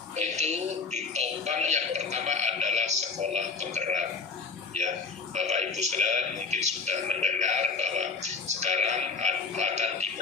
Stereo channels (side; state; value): right; quieter; 4.6 dB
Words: itu ditopang yang pertama adalah sekolah penggerak. Ya, Bapak Ibu sekalian mungkin sudah mendengar bahwa sekarang akan